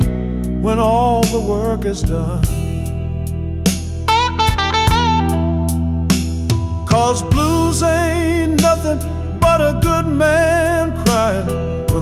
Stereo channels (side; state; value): both; identical; correlation 1.00